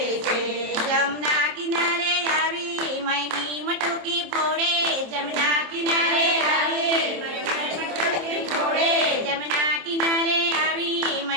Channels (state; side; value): late; left; 27 ms